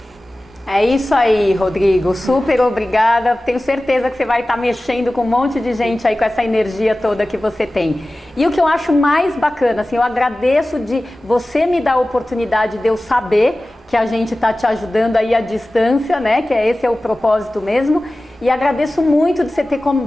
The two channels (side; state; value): both; normal; correlation 0.96